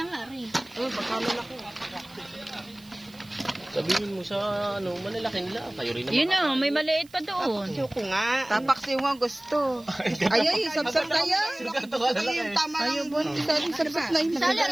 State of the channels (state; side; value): noise; right; hiss, 26 dB below the sound